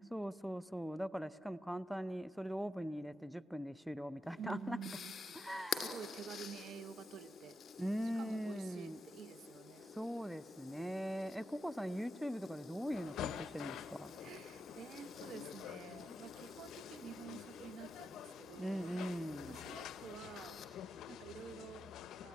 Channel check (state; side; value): normal; both; correlation 0.86